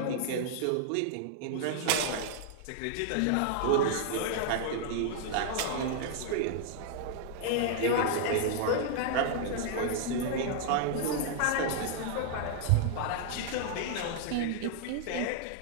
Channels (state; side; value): different; both; correlation -0.01